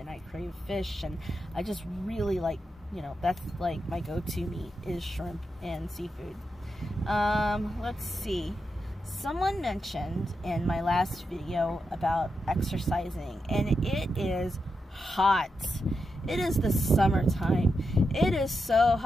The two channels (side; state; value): both; normal; correlation 0.86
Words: I crave fish, and I just really like, you know, that's like my go-to meat is shrimp and seafood. Let's see. Someone mentioned in my last video about exercising, and it is hot. It is the summertime. It is so